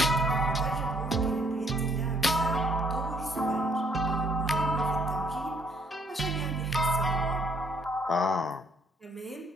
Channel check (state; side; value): normal; both; correlation 0.67